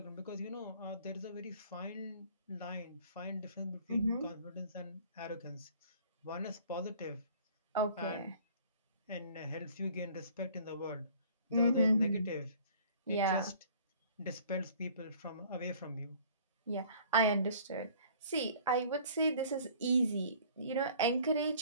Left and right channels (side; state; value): both; inverted; correlation -0.52